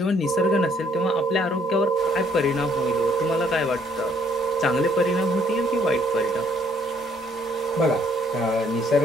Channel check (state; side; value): normal; both; correlation 0.65